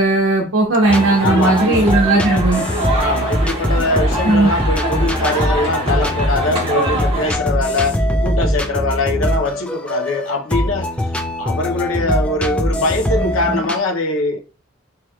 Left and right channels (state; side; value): normal; both; correlation 0.45